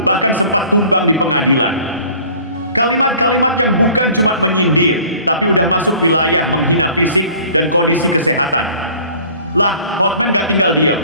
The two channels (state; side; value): inverted; both; correlation -0.49